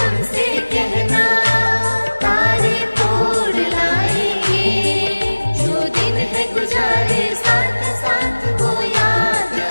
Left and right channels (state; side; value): inverted; both; correlation -1.00